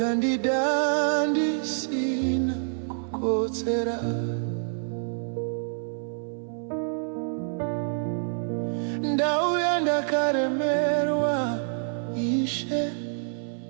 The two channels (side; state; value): left; silent; 59 dB below the other